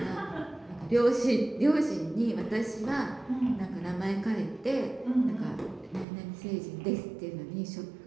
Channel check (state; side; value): drops out; left; at 6.1 s